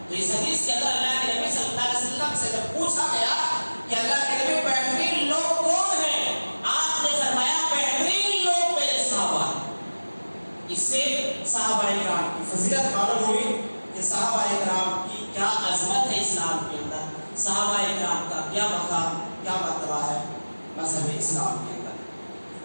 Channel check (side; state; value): both; inverted; correlation -1.00